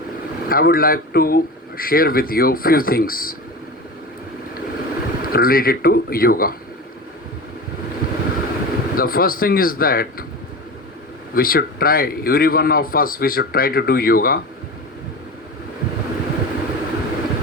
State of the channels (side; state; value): both; normal; correlation 0.29